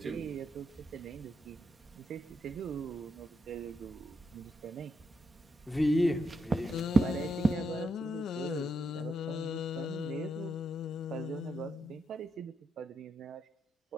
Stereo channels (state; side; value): normal; both; correlation 0.81